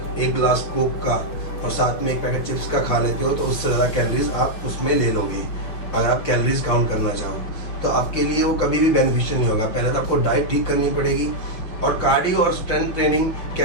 1 गिलास कोक का और साथ में 1 पैकेट चिप्स का खा लेते हो, तो उससे ज़्यादा कैलोरीज आप उसमें ले लोगे। अगर आप कैलोरीज काउंट करना चाहो तो आपके लिए वो कभी भी बेनिफिशियल नहीं होगा। पहले तो आपको डाइट ठीक करनी पड़ेगी। और कार्डियो और स्ट्रेंथ ट्रेनिंग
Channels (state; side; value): late; right; 5.9 ms